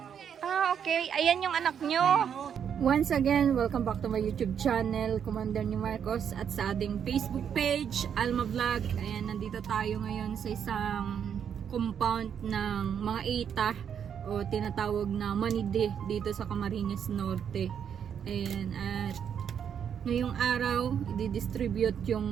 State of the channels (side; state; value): left; quieter; 8.1 dB